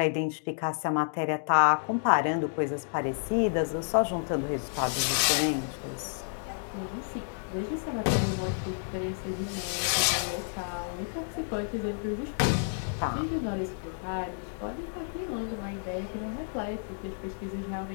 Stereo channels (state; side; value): silent; right; digital silence